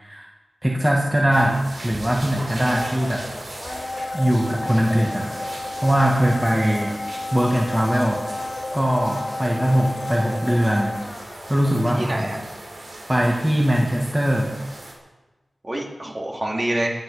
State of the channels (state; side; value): normal; both; correlation 0.97